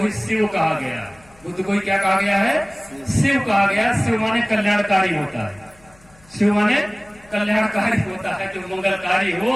शिव कहा गया है। बुद्ध को ही क्या कहा गया है? शिव कहा गया। शिव माने कल्याणकारी होता है। शिव माने कल्याणकारी होता है, जो मंगलकारी हो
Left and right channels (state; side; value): noise; left; hum, 28 dB below the sound